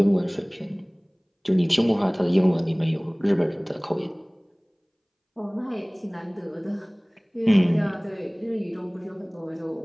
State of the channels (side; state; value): both; identical; correlation 1.00